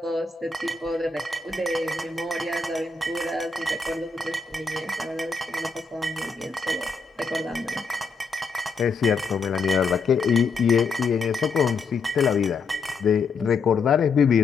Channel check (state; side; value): quieter; right; 4.6 dB